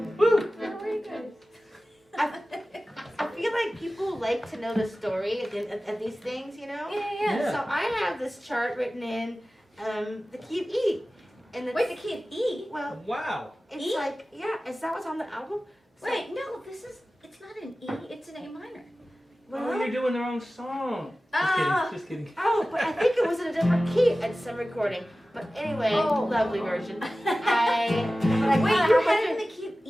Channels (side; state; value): both; normal; correlation 0.96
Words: Woo! Very good. I feel like people like to know the story at these things, you know? Yeah. Yeah. So I have this chart written in the key of E. And Wait, the key of E? Well, Wow. it's E? like, yeah, is that what's on the album? So- Wait, no, it's not an E, it's an A minor. Oh, you're doing the wrong song. Ah. Just kidding. Oh, but I think it was in a different key at some recording. But anyway, Oh. lovely version. Wait, But you how had it in much the key of